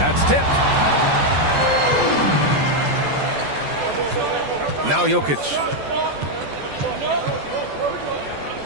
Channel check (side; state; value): left; late; 14 ms